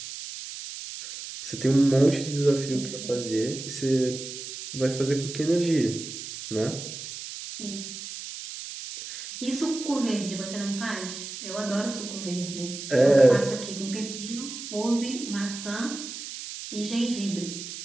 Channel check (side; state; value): right; noise; hiss, 9 dB below the sound